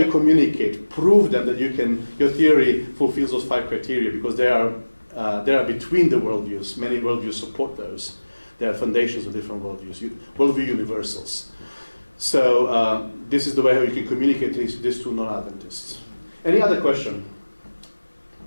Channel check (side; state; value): both; inverted; correlation -1.00